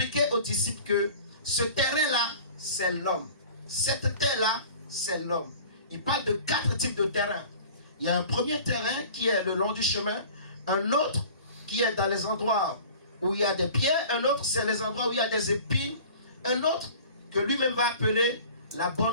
aux disciples que ce terrain-là, c'est l'homme. Cette terre-là, c'est l'homme. Il parle de 4 types de terrains. Il y a un premier terrain qui est le long du chemin. Un autre qui est dans les endroits où il y a des pierres. Un autre, c'est les endroits où il y a des épines. Un autre que lui-même va appeler la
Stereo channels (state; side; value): inverted; both; correlation -0.44